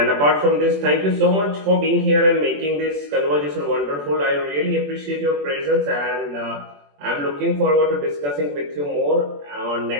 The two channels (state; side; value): late; left; 21 ms